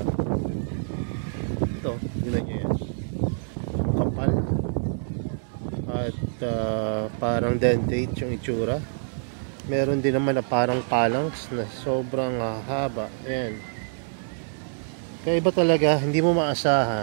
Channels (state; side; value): silent; left; digital silence